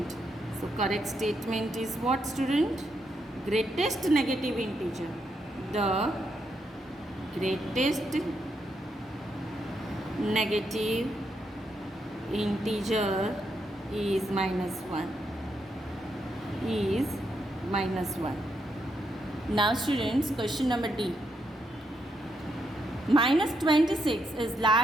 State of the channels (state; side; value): normal; both; correlation 0.80